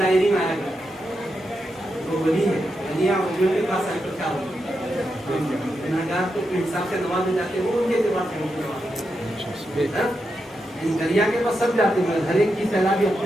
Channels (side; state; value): both; normal; correlation 0.86